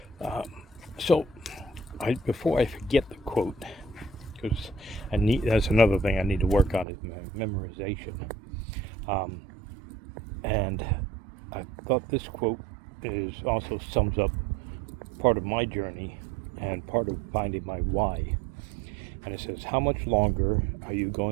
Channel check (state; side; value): drops out; left; at 6.9 s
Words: Um, so, before I forget the quote, because that's another thing I need to work on is memorization. Um, and I thought this quote is also sums up part of my journey and part of finding my why. And it says, "How much longer are you